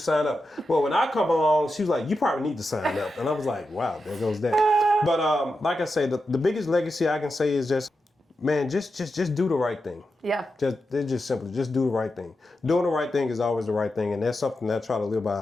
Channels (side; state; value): both; normal; correlation 0.89